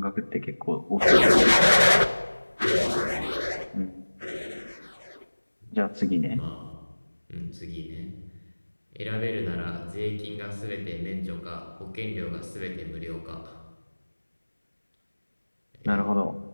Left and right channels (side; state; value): both; inverted; correlation -1.00